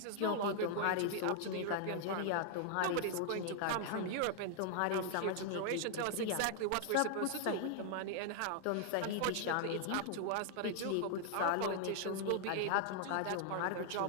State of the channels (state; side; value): different; both; correlation 0.00